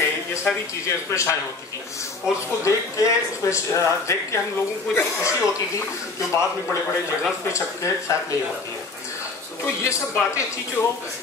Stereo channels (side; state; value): right; quieter; 3.7 dB